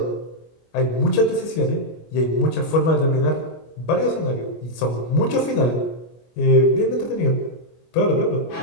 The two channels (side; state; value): right; late; 25 ms